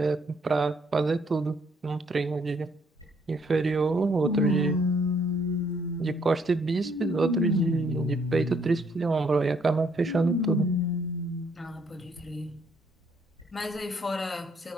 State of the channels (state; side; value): normal; both; correlation 0.68